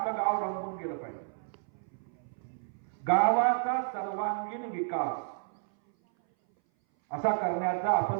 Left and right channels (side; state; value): left; silent; 57 dB below the other